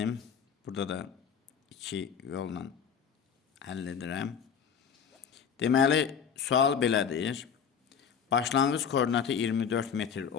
Burada da iki yolla həll edirəm. Deməli, sual belədir. Başlanğıc koordinatı 24 metr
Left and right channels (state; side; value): quieter; right; 7.2 dB